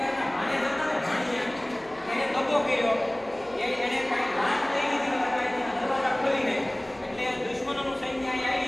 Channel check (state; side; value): noise; left; hum, 28 dB below the sound